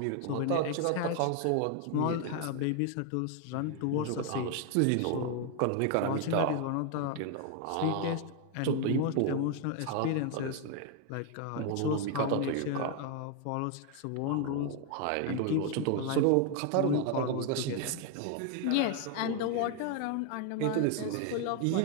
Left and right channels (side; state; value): both; different; correlation 0.01